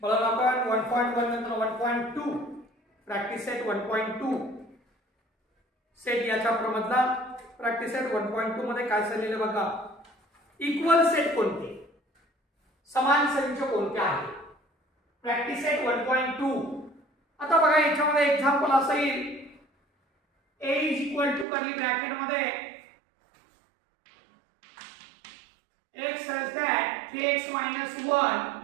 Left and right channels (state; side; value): drops out; left; at 21.5 s